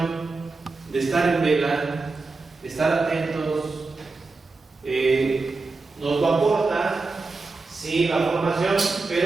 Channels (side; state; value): left; quieter; 3.8 dB